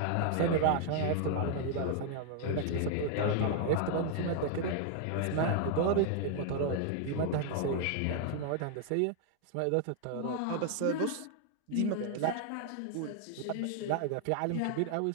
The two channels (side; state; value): both; different; correlation 0.00